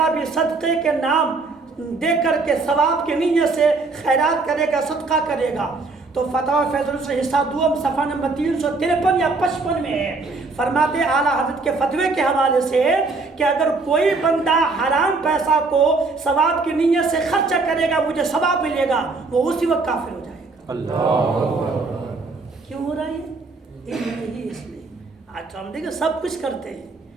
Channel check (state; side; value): quieter; left; 3.8 dB